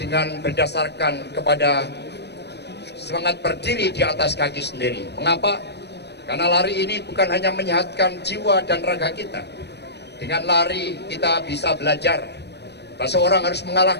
dengan berdasarkan kepada semangat berdiri di atas kaki sendiri. Mengapa? Karena lari ini bukan hanya menyehatkan jiwa dan raga kita. Dengan lari kita bisa belajar bahwa seorang harus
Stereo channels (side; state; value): right; late; 0.49 ms